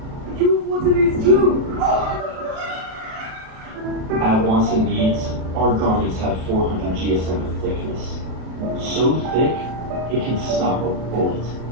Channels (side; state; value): left; late; 37 ms